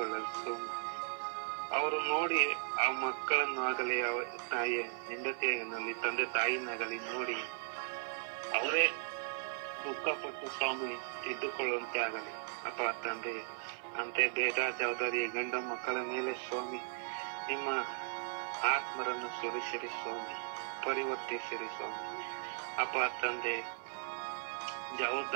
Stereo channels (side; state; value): left; silent; 53 dB below the other